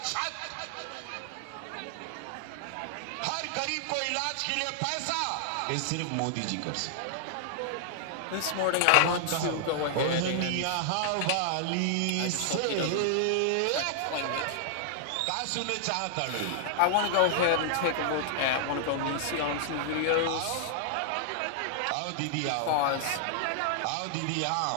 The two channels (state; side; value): different; both; correlation 0.00